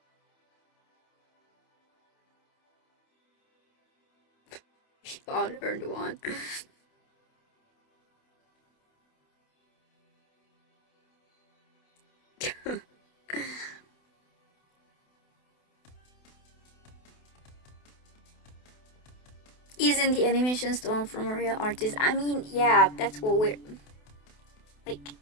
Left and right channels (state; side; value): late; right; 28 ms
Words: Unearned one. Isn't the animation stone from a real artist? I mean, yeah, that's what we're like.